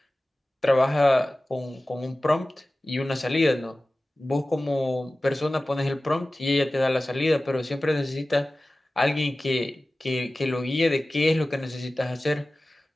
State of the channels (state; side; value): normal; both; correlation 0.97